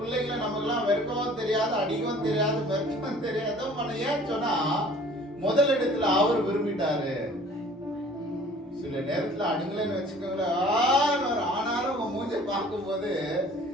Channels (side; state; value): both; normal; correlation 0.50